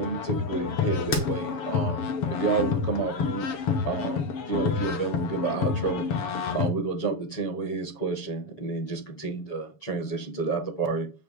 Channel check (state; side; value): late; right; 7.1 ms